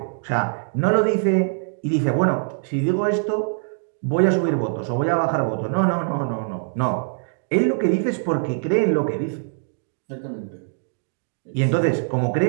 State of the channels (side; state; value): left; silent; digital silence